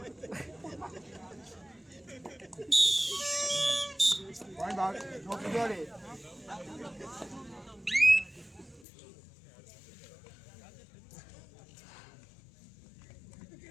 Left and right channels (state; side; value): drops out; right; at 8.8 s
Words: पॉइंट भाग जोडे.